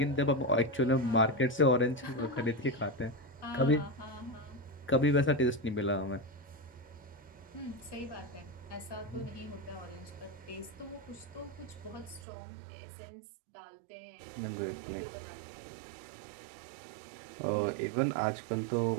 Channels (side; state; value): left; drops out; at 12.2 s